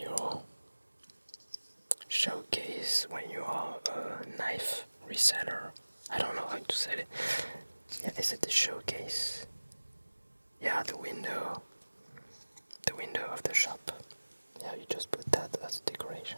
showcase when you are a knife reseller. I don't know how to say it. Yeah, is it the showcase? Yeah, the window of the shop. Yeah, you just put that as a decoration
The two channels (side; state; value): both; inverted; correlation -1.00